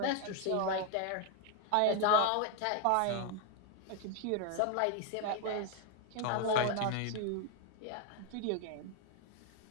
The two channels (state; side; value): different; both; correlation 0.01